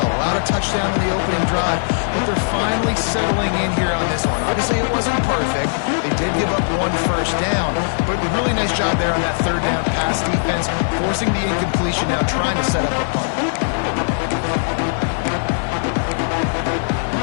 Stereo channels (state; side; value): silent; right; 66 dB below the other